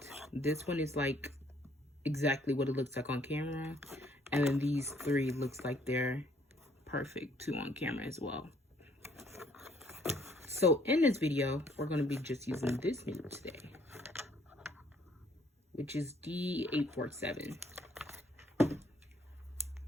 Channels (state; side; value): normal; both; correlation 0.65